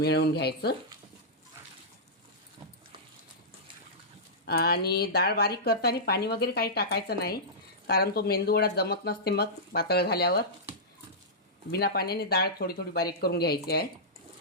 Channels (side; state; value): both; normal; correlation -0.14